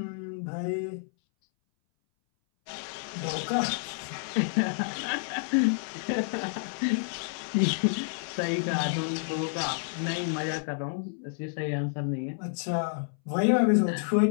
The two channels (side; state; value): right; silent; 58 dB below the other